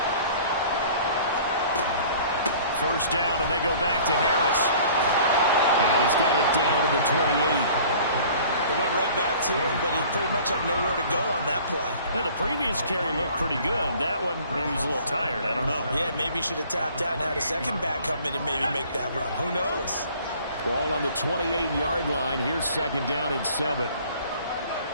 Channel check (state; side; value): inverted; both; correlation -0.50